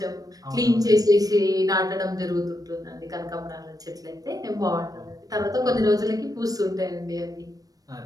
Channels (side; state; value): left; late; 0.18 ms